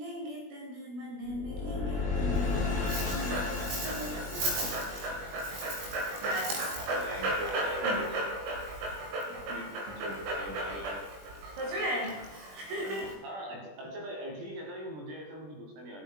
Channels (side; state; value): left; late; 20 ms